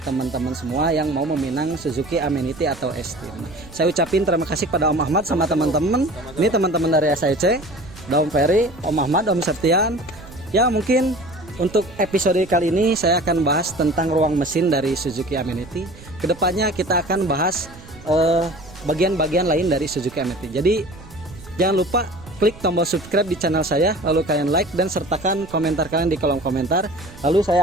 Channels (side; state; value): right; noise; rumble, 19 dB below the sound